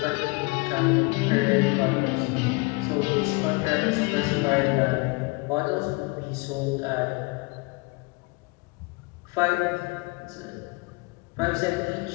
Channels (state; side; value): quieter; right; 27.6 dB